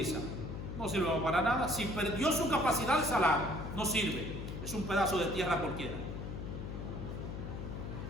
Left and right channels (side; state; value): left; noise; hum, 6 dB below the sound